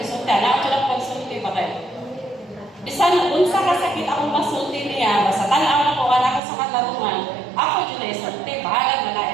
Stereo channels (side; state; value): left; drops out; at 6.4 s